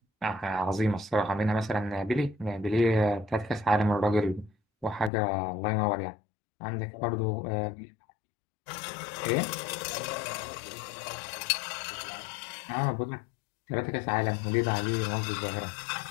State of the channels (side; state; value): right; drops out; at 5.1 s